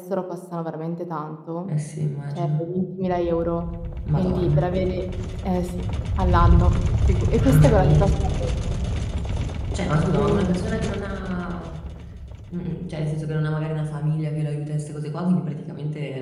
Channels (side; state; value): both; identical; correlation 1.00